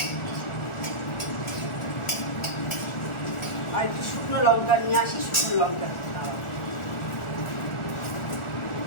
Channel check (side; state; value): right; late; 1.4 ms